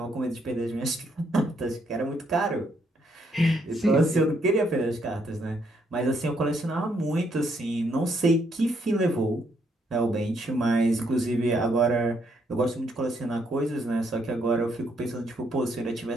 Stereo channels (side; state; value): both; normal; correlation 0.73